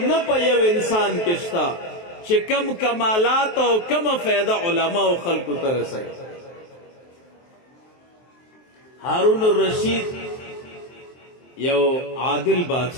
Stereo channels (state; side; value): late; right; 23 ms